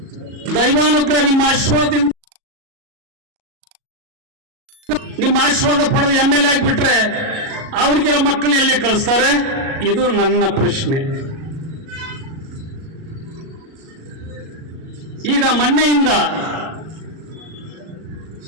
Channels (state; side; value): late; left; 37 ms